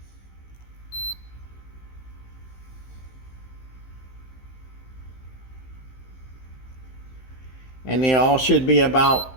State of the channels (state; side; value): late; right; 15 ms